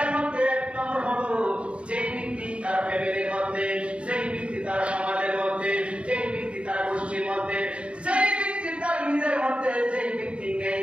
মধ্যে এক নম্বর হলো, যেই ব্যক্তি তার ফ্যামিলির মধ্যে, যেই ব্যক্তি তার সমাজের মধ্যে, যেই ব্যক্তি তার গোষ্ঠীর মধ্যে, যেই ব্যক্তি তার নিজের মধ্যে, যেই ব্যক্তি নেই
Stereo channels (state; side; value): late; left; 0.060 ms